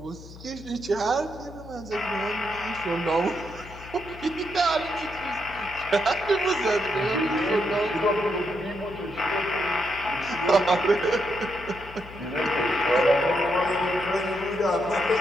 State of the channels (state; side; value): noise; left; hum, 17 dB below the sound